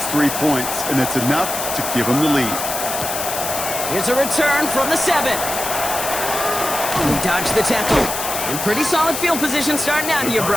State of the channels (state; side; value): noise; left; hiss, 4 dB below the sound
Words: 3 points, and it's enough to give them the lead. Here's a return from the 7. He dodged the tackle. In pretty solid field position starting out here,